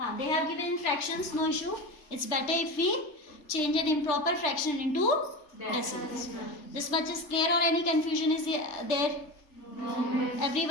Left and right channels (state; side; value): late; right; 3.3 ms